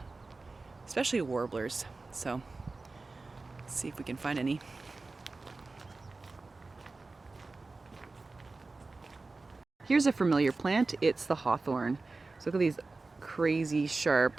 especially warblers. So let's see if we can find any. Here's a familiar plant. It's the hawthorn. So look at these crazy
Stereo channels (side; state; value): left; quieter; 3.6 dB